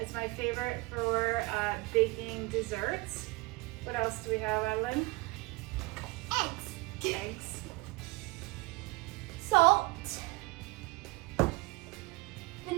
is my favorite for baking desserts. What else do we have, Evelyn? Eggs. Salt.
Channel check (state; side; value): quieter; left; 23.5 dB